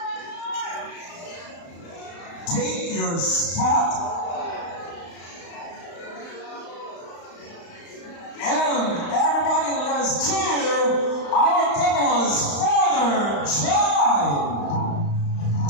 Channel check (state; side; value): late; right; 35 ms